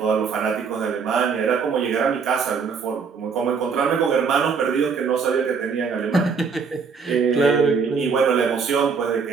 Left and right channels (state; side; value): quieter; left; 5.6 dB